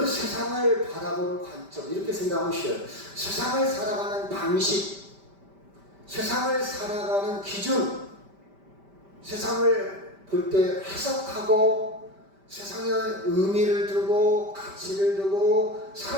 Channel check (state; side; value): late; left; 5.1 ms